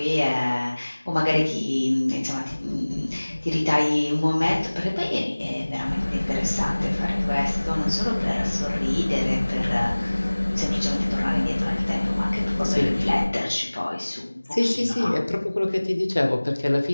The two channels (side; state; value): both; inverted; correlation -1.00